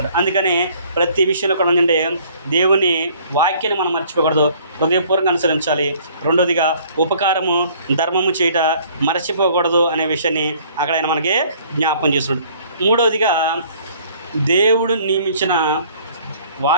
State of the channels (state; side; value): inverted; both; correlation -0.57